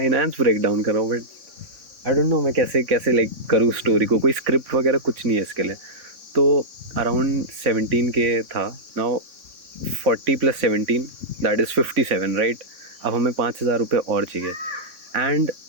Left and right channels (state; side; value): late; left; 3.5 ms